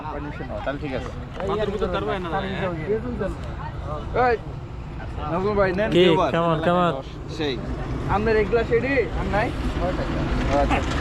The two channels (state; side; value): identical; both; correlation 1.00